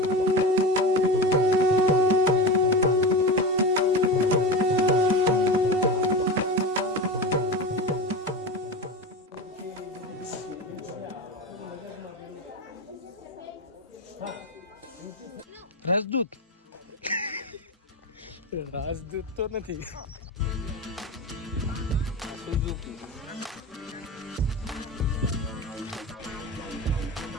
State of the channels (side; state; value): both; normal; correlation 0.25